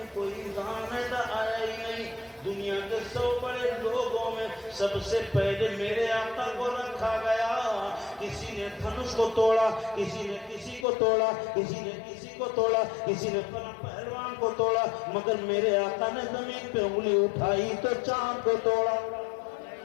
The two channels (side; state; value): right; drops out; at 10.9 s